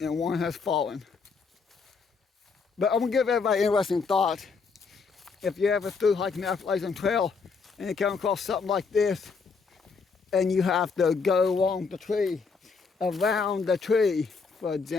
And one has fallen. But I'm gonna give everybody an interesting thought. If you ever through hiking the Appalachian Trail and you come across something like this, and you have to go along the tree, around the tree, for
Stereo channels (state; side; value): quieter; right; 4.9 dB